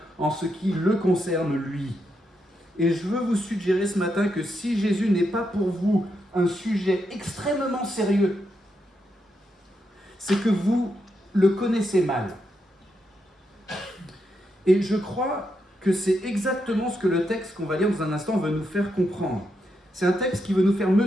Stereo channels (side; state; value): both; normal; correlation 0.83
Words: en ce qui le concerne lui. Et je veux vous suggérer ce matin que si Jésus n'est pas pour vous un sujet extrêmement sérieux, c'est que vous le connaissez mal. Et je crois que c'est exactement ce que le texte qu'on va lire dans un instant veut nous faire comprendre. C'est un texte qui veut nous faire